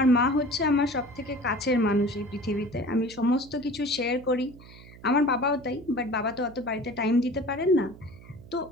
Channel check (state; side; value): noise; right; hum, 20 dB below the sound